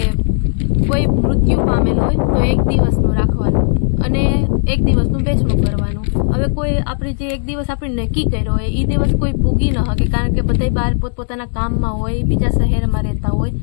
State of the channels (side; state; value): right; silent; 68 dB below the other